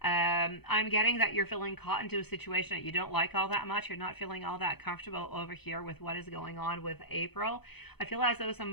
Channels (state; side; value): late; right; 0.98 ms